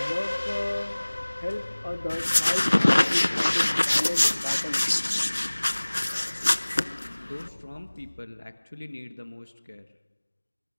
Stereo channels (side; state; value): both; inverted; correlation -1.00